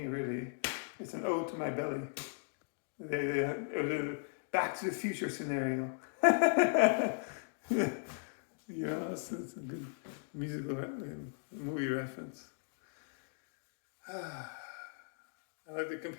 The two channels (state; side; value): silent; right; digital silence